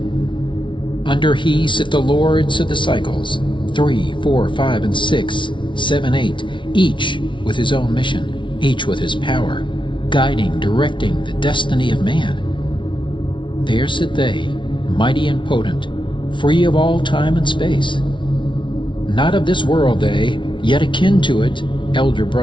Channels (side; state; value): right; late; 0.24 ms